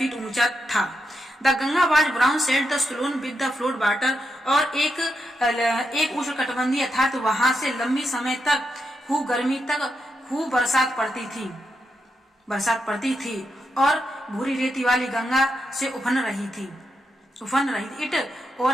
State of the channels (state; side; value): normal; both; correlation 0.85